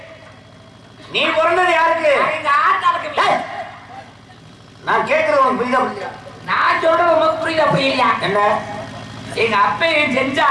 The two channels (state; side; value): identical; both; correlation 1.00